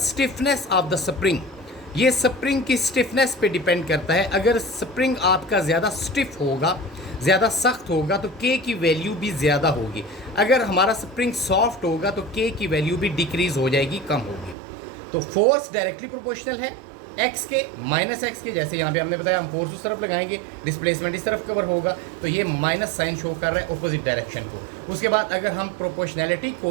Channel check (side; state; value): left; drops out; at 14.6 s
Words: of the spring, ये स्प्रिंग की स्टिफनेस पे डिपेंड करता है। अगर स्प्रिंग आपका ज़्यादा स्टिफ होगा, ज़्यादा सख्त होगा तो के की वैल्यू भी ज़्यादा होगी, अगर हमारा स्प्रिंग सॉफ्ट होगा तो के की वैल्यू भी डिक्रीज़ हो जाएगी, कम होगी। तो फोर्स डायरेक्टली प्रोपोर्शनल है एक्स के माइनस एक्स के, जैसे यहाँ पे हमने बताया हम फोर्स उस तरफ लगाएंगे, डिस्प्लेसमेंट इस तरफ कवर होगा, तो ये माइनस साइन शो कर रहा है अपोजिट डायरेक्शन को। उसके बाद अगर हम प्रोपोर्शनैलिटी